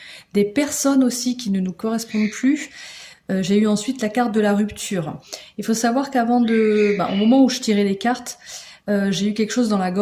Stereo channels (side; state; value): both; identical; correlation 1.00